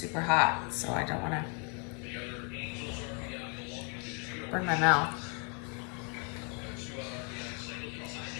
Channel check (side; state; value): right; quieter; 36.5 dB